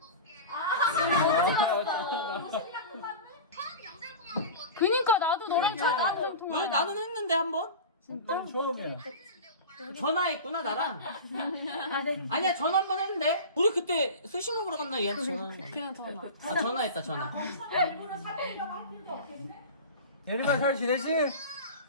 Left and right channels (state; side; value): inverted; both; correlation -0.30